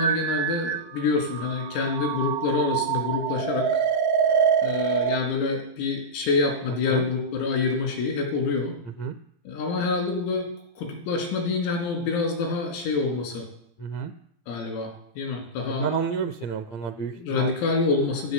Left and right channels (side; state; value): right; late; 17 ms